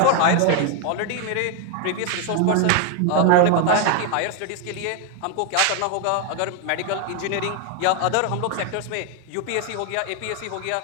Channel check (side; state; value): both; different; correlation 0.01